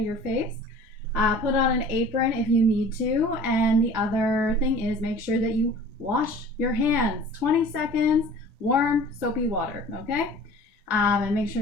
your face. Put on an apron if you need to, and the other thing is make sure that you wash your hands. 20 seconds, warm, soapy water, okay? And make sure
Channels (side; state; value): both; normal; correlation 0.44